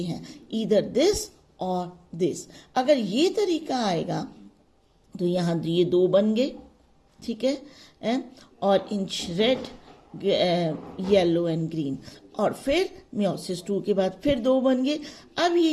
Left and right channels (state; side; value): identical; both; correlation 1.00